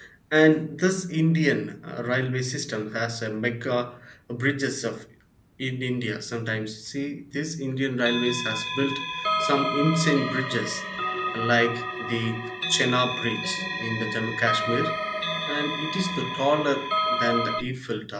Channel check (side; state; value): both; identical; correlation 1.00